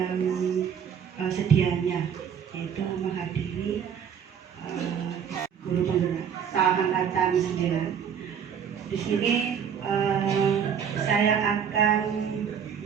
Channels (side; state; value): left; quieter; 7.9 dB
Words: sedianya yaitu menghadiri guru penggerak angkatan 9. Di sini saya akan